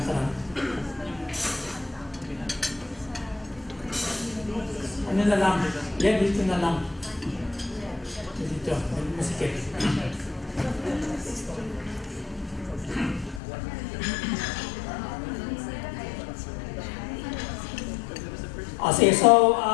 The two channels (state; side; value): drops out; right; at 13.4 s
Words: Ano na lang? Yen, dito na lang. Dito, masikip. Okay, so,